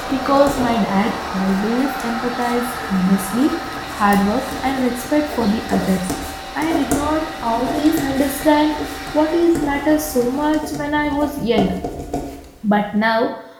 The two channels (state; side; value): identical; both; correlation 1.00